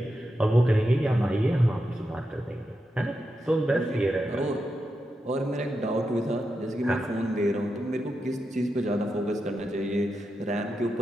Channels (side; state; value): both; normal; correlation 0.88